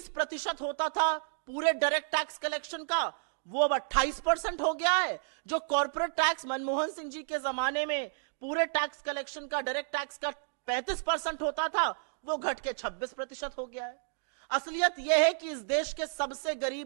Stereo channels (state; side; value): silent; left; digital silence